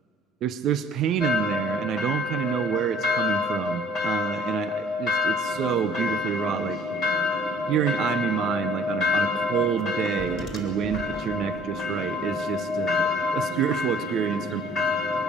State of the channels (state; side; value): normal; both; correlation 0.54